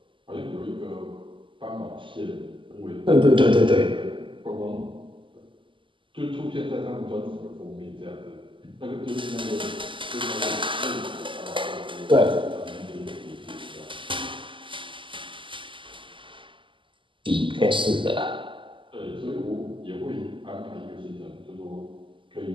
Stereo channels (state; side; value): late; left; 0.25 ms